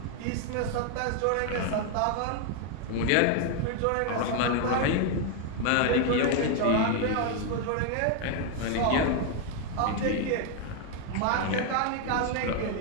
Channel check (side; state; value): both; different; correlation 0.01